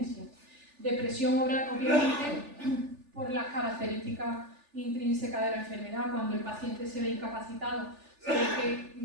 Depresión, obviamente, por las características intrínsecas de la enfermedad. Cuando el paciente se ve incapacitado, se ve que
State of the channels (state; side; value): late; left; 3.4 ms